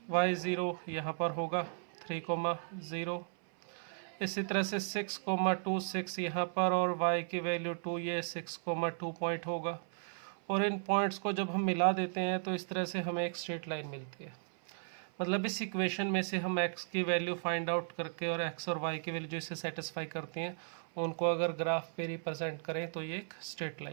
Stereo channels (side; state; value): left; silent; 54 dB below the other